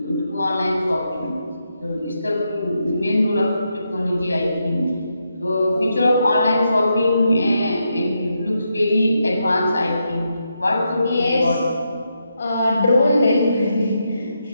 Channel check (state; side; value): inverted; both; correlation -0.83